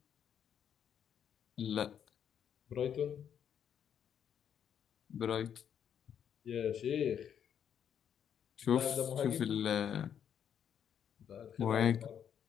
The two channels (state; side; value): quieter; right; 8.7 dB